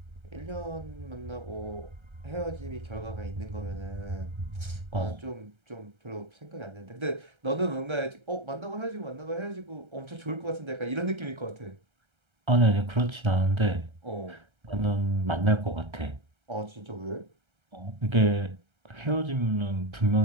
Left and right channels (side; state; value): left; late; 1.3 ms